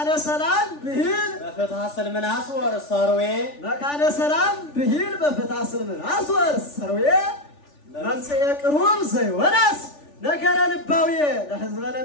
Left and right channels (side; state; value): right; late; 3.4 ms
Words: سلام بهيل بفتح سلمناس ورساروي مكان سلام بهيل بفتح سلمناس ورساروي ممصئ قروب زيوناس نجر لباوية